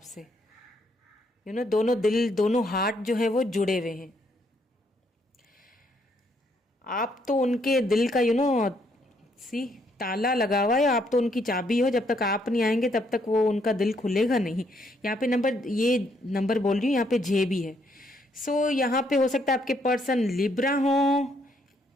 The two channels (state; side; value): normal; both; correlation 0.71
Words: दोनों दिल, दोनों हार्ट जो है वो जुड़े हुए हैं। आप तो उनके दिल का सी ताला लगा हुआ है, आप तो उनकी चाबी हो। जब तक आप नहीं आएंगे तब तक वो उनका दिल खुलेगा नहीं। यहाँ पे ये नंबर बोल रही हूँ, यहाँ पे जे भी है। सो यहाँ पे हो सकता है आपके पर्सन लिब्रा हो,